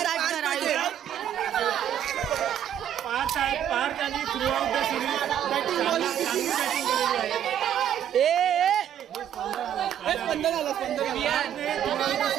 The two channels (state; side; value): quieter; left; 10.1 dB